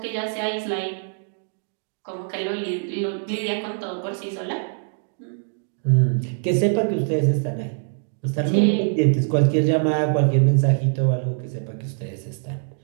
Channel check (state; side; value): silent; left; digital silence